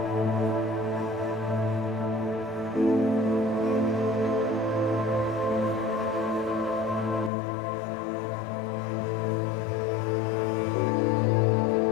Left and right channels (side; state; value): right; drops out; at 7.3 s